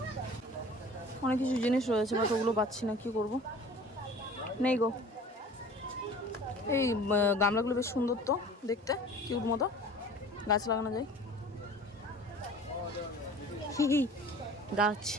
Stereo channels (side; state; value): both; normal; correlation 0.44